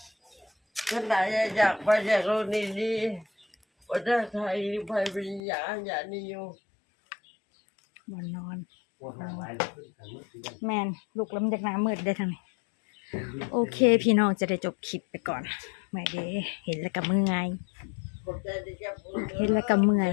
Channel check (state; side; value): drops out; right; at 5.4 s